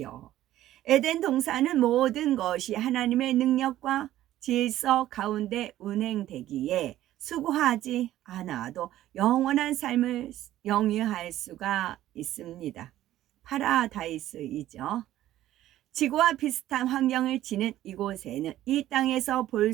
에덴 동산은 모든 것이 하나님의 능력과 질서 가운데 운행되기에 수고하지 않아도 영원한 삶을 영위할 수가 있습니다. 파라다이스이죠. 지구와 비슷한 환경을 지닌 이곳에는 이 땅에서 볼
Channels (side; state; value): left; quieter; 13.7 dB